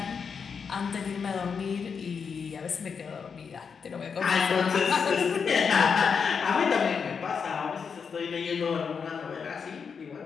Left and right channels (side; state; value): right; quieter; 6.1 dB